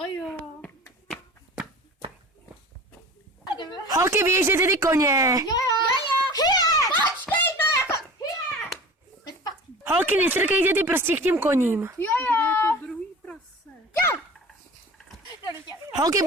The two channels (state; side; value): normal; both; correlation 0.38